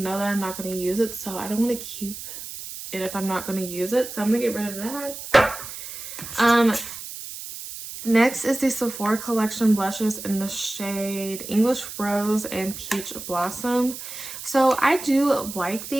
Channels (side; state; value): right; noise; hiss, 10 dB below the sound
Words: that I'm not going to use it, so I don't want to keep it if I'm not going to use it. So I'm going to get rid of that. Next is the Sephora Collection blushes in the shade English Rose and Peach Blossom. So I do like